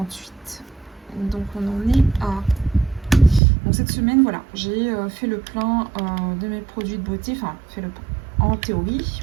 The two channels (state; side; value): drops out; left; at 3.4 s